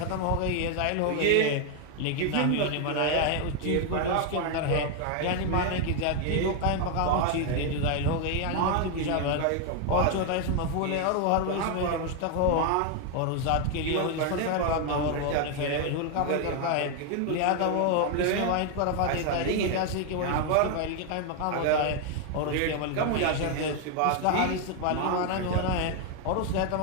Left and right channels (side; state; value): both; different; correlation 0.01